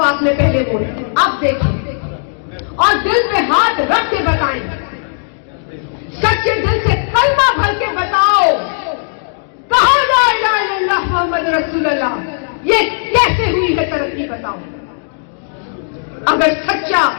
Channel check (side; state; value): right; silent; digital silence